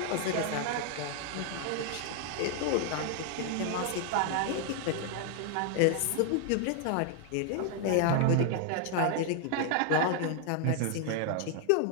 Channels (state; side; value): different; both; correlation 0.00